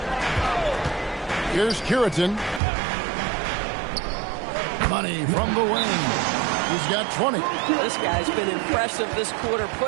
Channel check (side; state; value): left; drops out; at 2.6 s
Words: Here's Curitin. Money from the wing. He's got 20. This guy's been impressive this quarter,